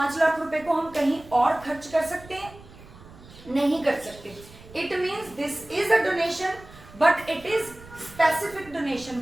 लाख रुपए को हम कहीं और खर्च कर सकते हैं? नहीं कर सकते। It means this is a donation but it is specific donation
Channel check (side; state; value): right; noise; rumble, 20 dB below the sound